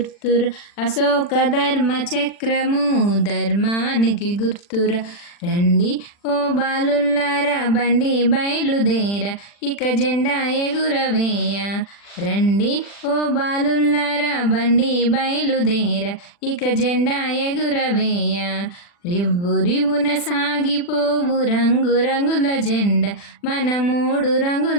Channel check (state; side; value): late; right; 40 ms